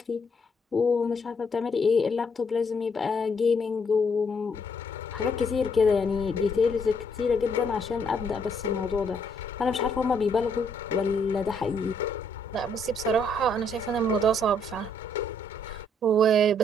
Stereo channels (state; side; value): normal; both; correlation 0.70